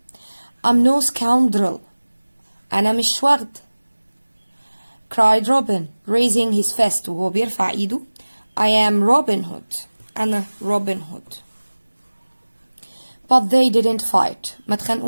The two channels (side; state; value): both; inverted; correlation -1.00